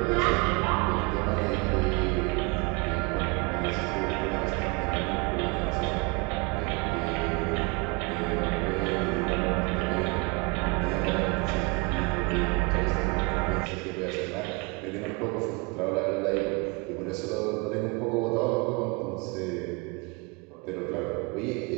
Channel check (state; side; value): quieter; left; 29.7 dB